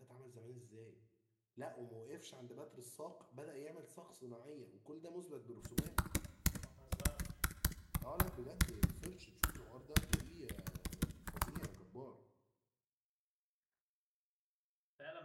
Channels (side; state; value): both; identical; correlation 1.00